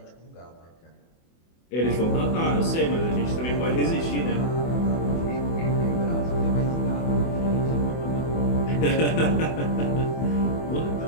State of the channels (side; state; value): right; late; 24 ms